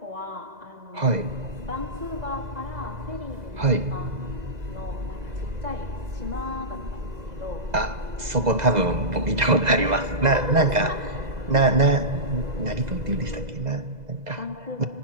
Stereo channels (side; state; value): left; late; 2.0 ms